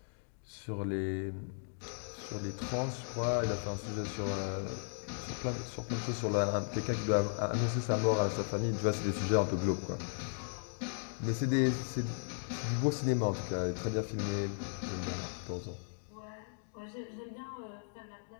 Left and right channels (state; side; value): silent; right; digital silence